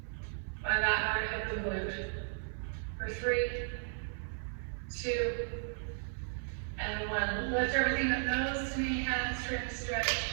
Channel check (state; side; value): silent; left; 54 dB below the other